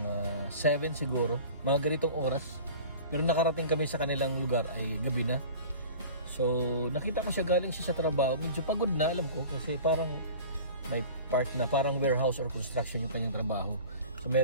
7 siguro, mga ganitong oras. Pero nakarating kami sa kanilang lugar ay gabi na. So nakita ko siya, galing siya sa trabaho, medyo pagod na, alam ko, kasi parang may part na parang warehouse or construction yung kanyang trabaho. So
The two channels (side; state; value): both; inverted; correlation -0.41